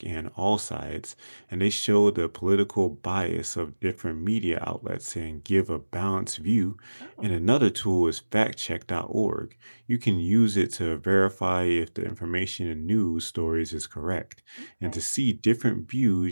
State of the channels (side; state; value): both; inverted; correlation -1.00